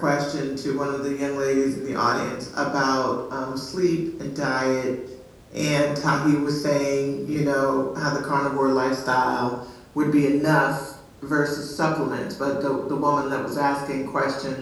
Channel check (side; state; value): both; identical; correlation 1.00